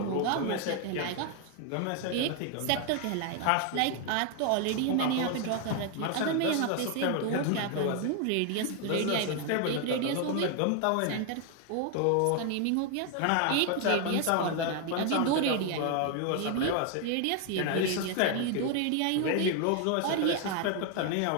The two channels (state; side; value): different; both; correlation 0.01